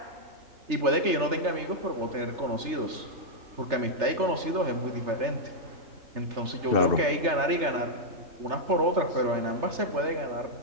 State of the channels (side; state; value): left; late; 3.3 ms